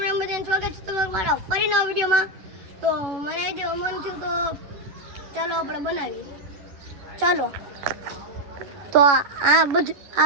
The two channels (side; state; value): left; late; 11 ms